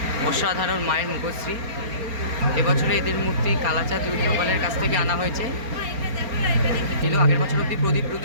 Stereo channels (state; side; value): late; left; 4.3 ms